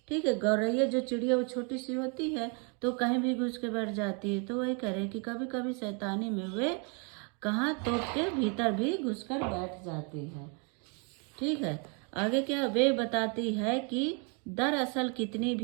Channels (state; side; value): quieter; left; 35.7 dB